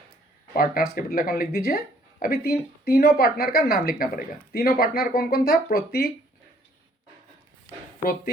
Partners capital account लिख दीजिए। अभी तीनों पार्टनर का नाम लिखना पड़ेगा। तीनों पार्टनर कौन कौन था? प्रतीक,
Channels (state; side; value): normal; both; correlation 0.63